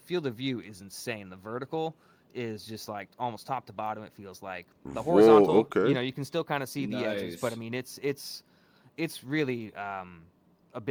of view is insane. The vertical is just like almost top to bottom. It feels like the horizontal. Whoa, okay. You can still kind of see the edges, but I mean, it's really a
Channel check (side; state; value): both; identical; correlation 1.00